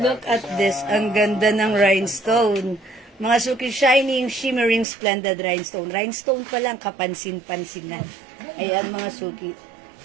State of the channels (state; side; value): drops out; left; at 4.9 s